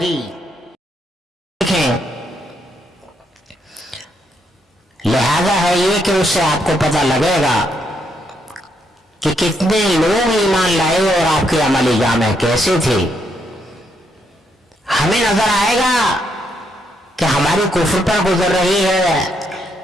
دیکھیں، لہذا ہے یہ کہ اس سے آپ کو پتہ لگے گا کہ کتنے لوگ ایمان لائے اور آپ کے عملی جامع کیسے تھے۔ ہمیں نظر آئے گا کہ ہماری کفر پر گزر رہی ہے،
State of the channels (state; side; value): normal; both; correlation 0.76